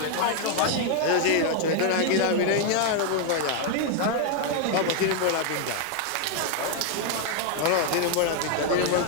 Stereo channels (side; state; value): both; different; correlation 0.00